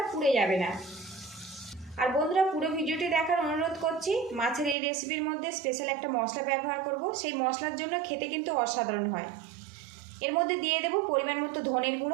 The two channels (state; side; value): drops out; left; at 4.8 s